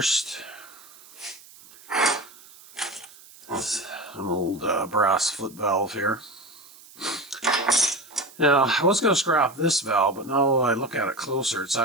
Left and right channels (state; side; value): noise; right; hiss, 22 dB below the sound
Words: It's an old brass foot valve here. Now, I was going to scrap this valve, but now I look at it closer, it's